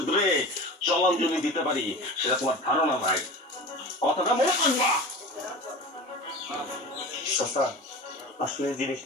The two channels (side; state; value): both; normal; correlation 0.33